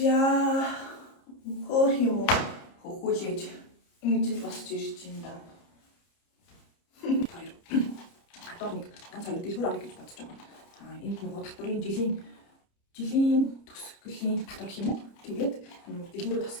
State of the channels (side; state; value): right; late; 30 ms